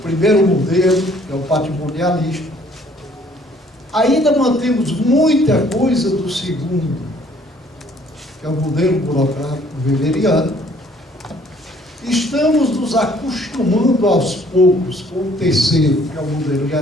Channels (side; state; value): both; normal; correlation 0.60